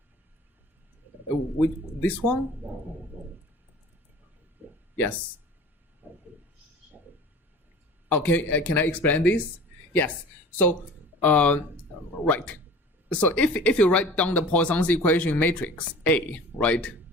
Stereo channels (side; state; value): both; normal; correlation 0.42